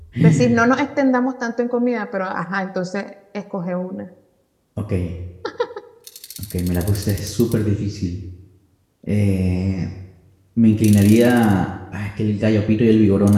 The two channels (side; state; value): both; identical; correlation 1.00